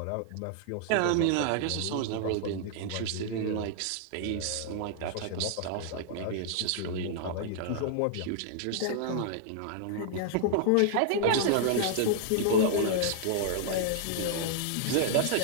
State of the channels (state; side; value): different; both; correlation -0.01